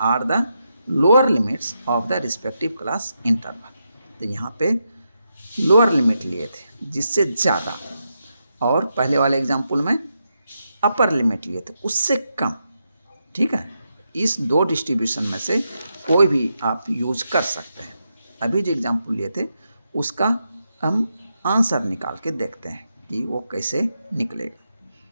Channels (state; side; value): inverted; both; correlation -0.84